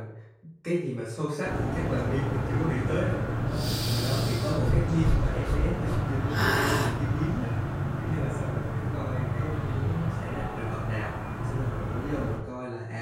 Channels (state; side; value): identical; both; correlation 1.00